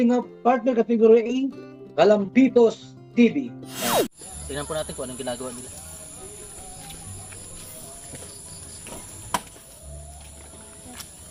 partner category A, Kalampitos TV. Tingnan po natin kung anong ginagawa nila.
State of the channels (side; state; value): both; identical; correlation 1.00